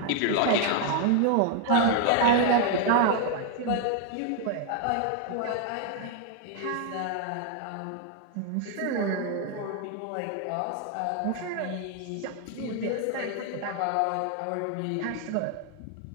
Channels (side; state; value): both; different; correlation 0.00